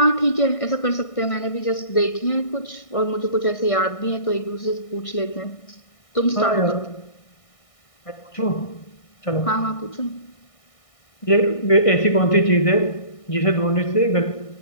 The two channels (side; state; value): right; late; 1.6 ms